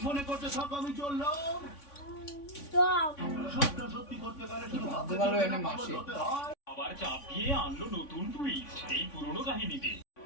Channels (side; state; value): right; late; 3.5 ms